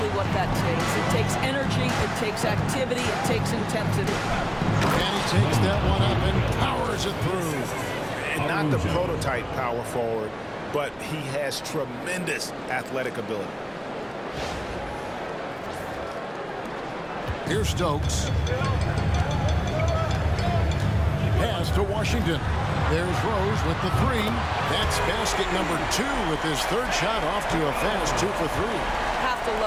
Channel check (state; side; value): identical; both; correlation 1.00